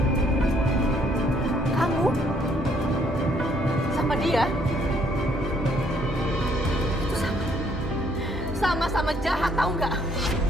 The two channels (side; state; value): both; normal; correlation 0.66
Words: Kamu sama dia itu sama-sama jahat, tahu nggak?